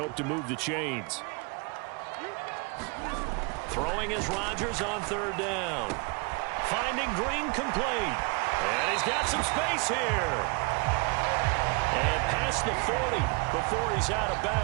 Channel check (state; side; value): quieter; left; 31.2 dB